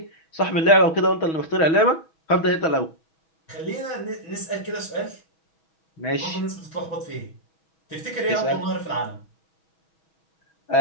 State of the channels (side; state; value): right; late; 6.2 ms